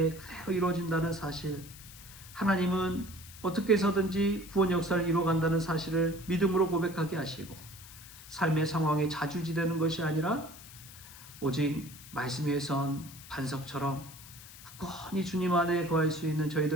그대로 이루어진다는 사실, 하나님은 어떻게 해서든지 구원 역사를 이루어간다는 사실을 믿음으로 고백하게 하시고, 삶의 상황에 자주지되는 것이 아니라 오직 말씀 위에 선 반석처럼 굳건히 주님 안에 거할 수 있는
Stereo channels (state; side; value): noise; left; hiss, 17 dB below the sound